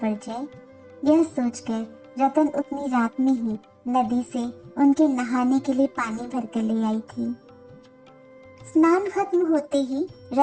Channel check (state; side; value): identical; both; correlation 1.00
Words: पड़ जाए, यह सोचकर रतन उतनी रात में ही नदी से उनके नहाने के लिए पानी भरकर ले आई थी। स्नान खत्म होते ही